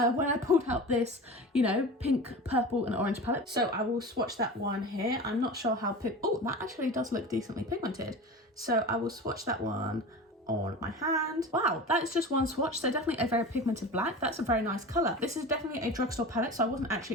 I pulled out this, you know, pink, purple and orange palette. So I will swatch that one here. I'm not sure how oh, that actually does look decently pigmented. So I will swatch that one on my hand. Wow, that is just one swatch, so definitely a very pigmented black. That's a very nice color. This is definitely a drugstore palette, so I wasn't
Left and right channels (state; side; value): normal; both; correlation 0.33